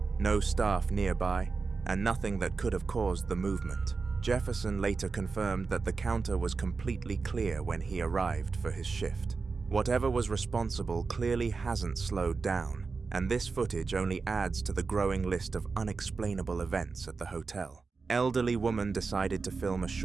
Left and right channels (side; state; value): left; quieter; 4.5 dB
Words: no staff nearby, and nothing that could have caused the movement. Jefferson later confirmed that the counter was completely clear when he arrived for his shift. Whatever was responsible clearly hasn't slowed down, and this footage only adds to the growing list of unexplainable events at the hotel. Elderly woman decided to film a